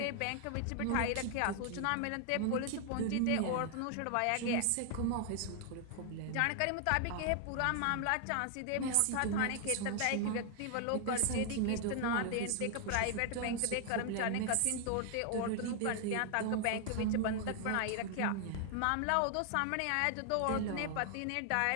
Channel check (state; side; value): different; both; correlation 0.00